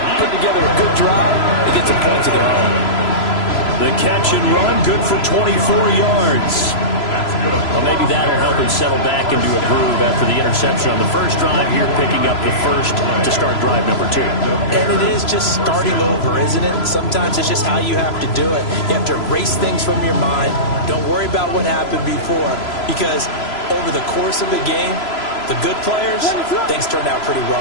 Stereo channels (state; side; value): late; right; 3.0 ms